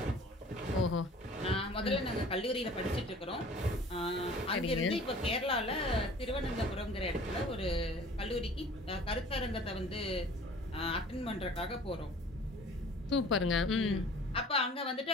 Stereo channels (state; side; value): normal; both; correlation 0.48